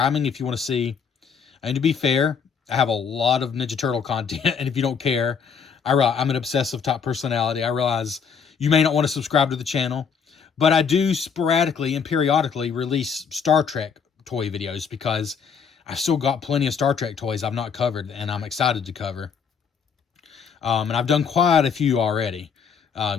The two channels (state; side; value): quieter; right; 6.4 dB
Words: if you want to see. And to be fair, I have a lot of Ninja Turtle content, and if you don't care, I'm an obsessive top personality. I realize you may not want to subscribe to the channel, but I do sporadically and periodically release Star Trek toy videos, because I've still got plenty of Star Trek toys I've not covered, and I'm excited to cover. And I've done quite a few already.